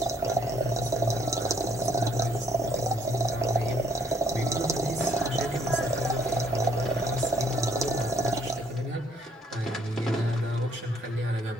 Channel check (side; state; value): both; normal; correlation 0.66